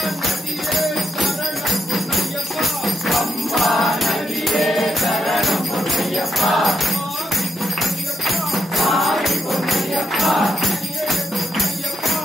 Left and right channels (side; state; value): both; normal; correlation 0.81